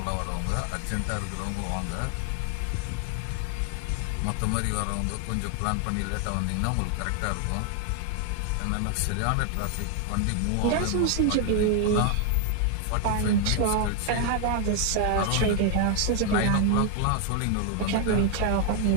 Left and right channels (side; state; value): both; different; correlation 0.00